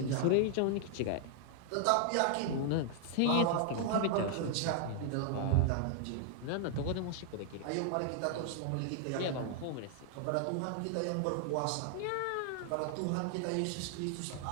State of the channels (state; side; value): different; both; correlation 0.00